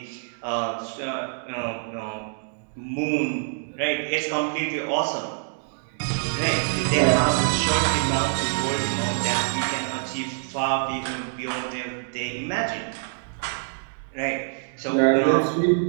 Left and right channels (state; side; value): silent; left; digital silence